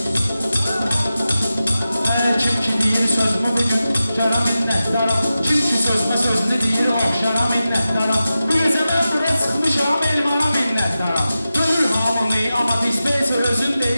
Hər kim ki deyir sözümü bugün şara minnətdara. Kim ki sözmə sözünü deyir oxşara minnətdara. Bu gecə mən bura çıxmışam elmana minnətdara. Görür hamını amma dispenser özün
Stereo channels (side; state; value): both; inverted; correlation -0.93